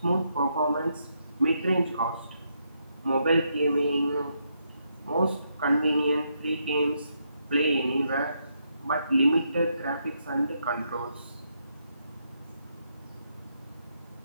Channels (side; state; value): both; inverted; correlation -0.78